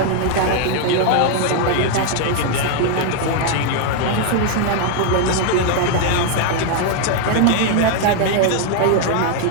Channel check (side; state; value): both; different; correlation 0.00